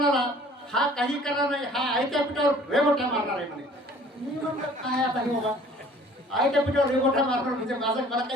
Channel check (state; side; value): normal; both; correlation 0.52